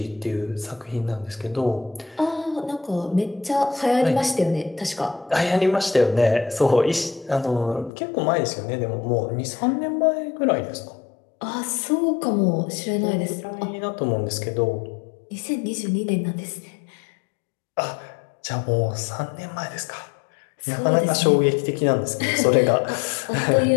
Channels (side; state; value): right; drops out; at 7.9 s